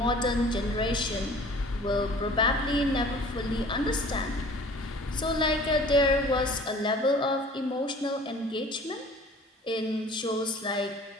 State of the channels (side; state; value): both; normal; correlation 0.48